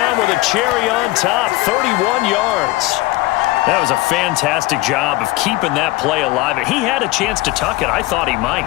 with a cherry on top, 31 yards. That was a fantastic job of keeping that play alive. He had a chance to tuck it. I thought he might.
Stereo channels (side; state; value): right; quieter; 19.4 dB